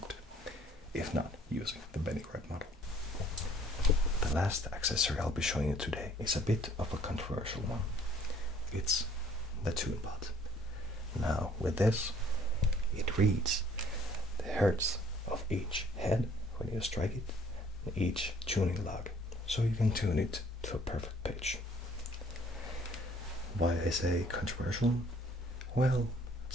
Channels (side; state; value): both; normal; correlation 0.58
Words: if not using the Benny Red model. The last accessory I'll be showing you today is a bit of a controversial one. It's the toon pot. Now with this, it reads the hertz of each head when you strike it, and each tuning log, so you can tune it to a perfect pitch. Why I say controversial? Well,